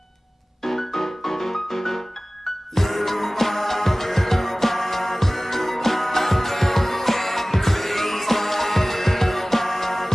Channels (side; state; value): both; normal; correlation 0.98